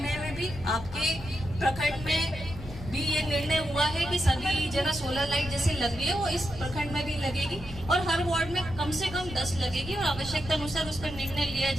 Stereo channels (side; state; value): left; noise; rumble, 12 dB below the sound